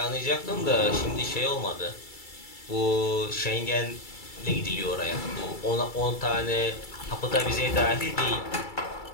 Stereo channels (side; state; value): right; late; 2.3 ms